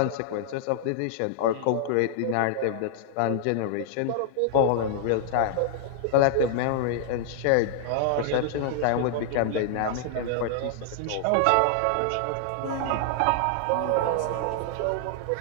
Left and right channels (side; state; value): both; different; correlation -0.01